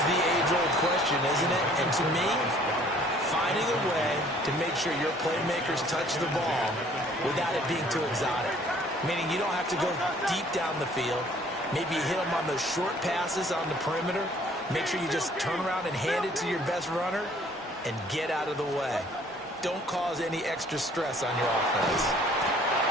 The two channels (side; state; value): both; normal; correlation 0.57